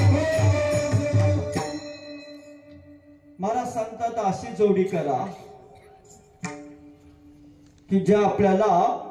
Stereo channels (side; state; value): both; identical; correlation 1.00